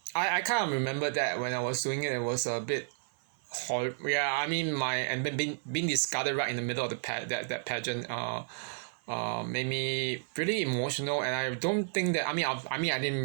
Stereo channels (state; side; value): silent; left; 57 dB below the other